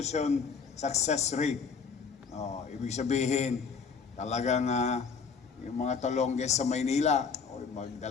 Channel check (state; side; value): quieter; right; 5.7 dB